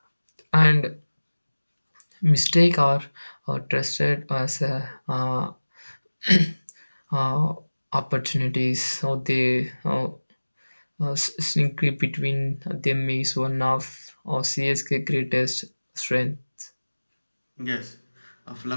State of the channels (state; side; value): inverted; both; correlation -1.00